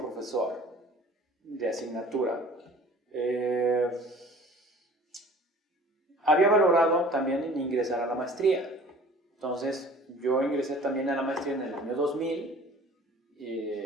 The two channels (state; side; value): normal; both; correlation 0.47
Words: de asignatura, había valorado también en ingresar a la maestría. Entonces, yo ingresé también a la maestría en el año 2000,